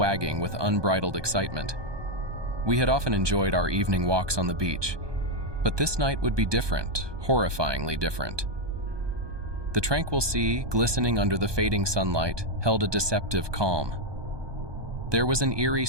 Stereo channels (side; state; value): left; late; 1.2 ms